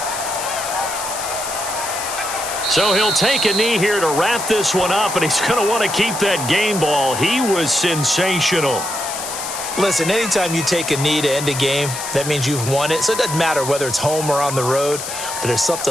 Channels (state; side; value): noise; left; hiss, 7 dB below the sound